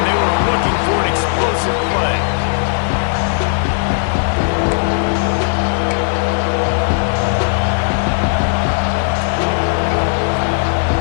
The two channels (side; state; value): right; silent; digital silence